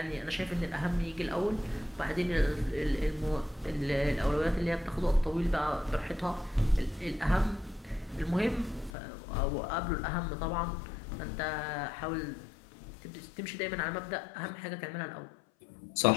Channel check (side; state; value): right; drops out; at 8.9 s